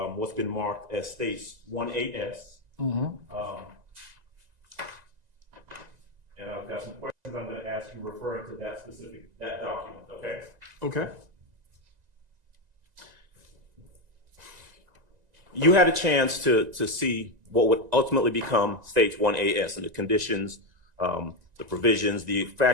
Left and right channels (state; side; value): late; left; 1.9 ms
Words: what's been marked as states 1AS. Mm-hmm. And I've got some questions I'm going to ask you referring to that document, okay? Okay. You had a chance to see what would ultimately become stage 1AS and the conditions, the provisions, the